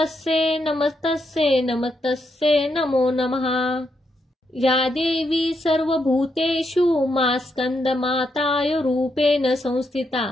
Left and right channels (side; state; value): both; normal; correlation 0.80